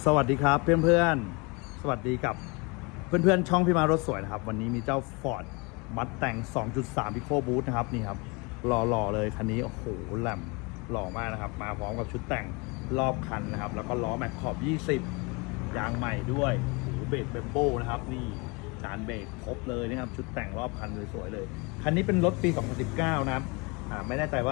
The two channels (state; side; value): quieter; right; 28.9 dB